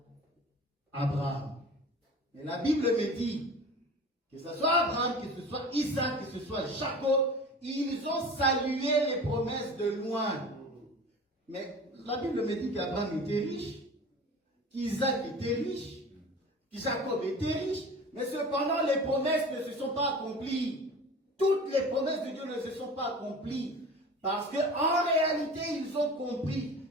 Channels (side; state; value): both; normal; correlation 0.38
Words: Abraham. Et la Bible me dit que ce soit Abraham, que ce soit Isaac, que ce soit Jacob, ils ont salué les promesses de loin. Mais la Bible me dit qu'Abraham était riche, qu'Isaac était riche, que Jacob était riche. Mais cependant, les promesses ne se sont pas accomplies. Toutes les promesses de Dieu ne se sont pas accomplies. Parce qu'en réalité, ils ont compris